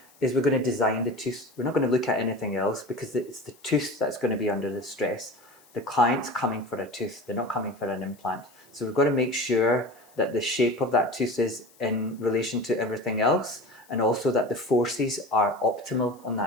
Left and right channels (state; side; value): noise; left; hiss, 28 dB below the sound